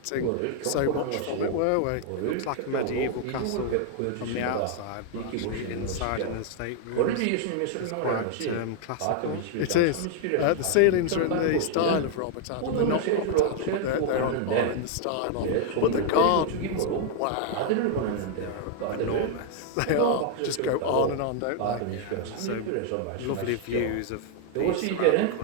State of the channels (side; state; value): both; different; correlation 0.00